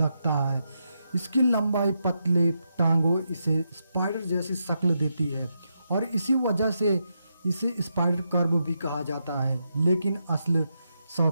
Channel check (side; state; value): both; inverted; correlation -0.83